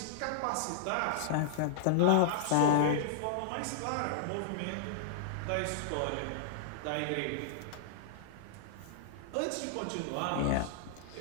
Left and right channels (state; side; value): different; both; correlation -0.01